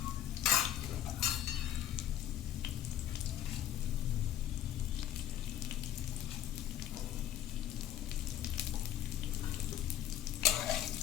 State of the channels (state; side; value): quieter; right; 11.5 dB